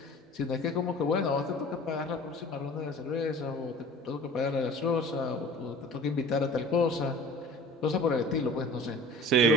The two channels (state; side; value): normal; both; correlation 0.42